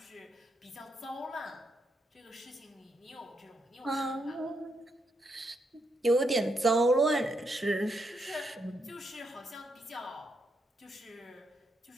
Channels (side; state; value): both; normal; correlation 0.79